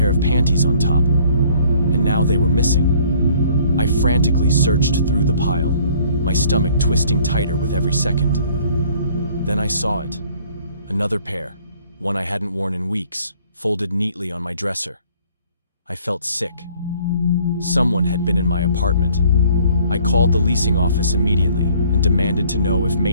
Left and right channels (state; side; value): inverted; both; correlation -0.58